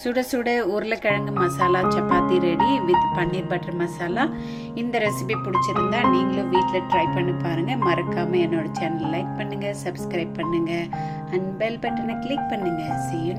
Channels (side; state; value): both; identical; correlation 1.00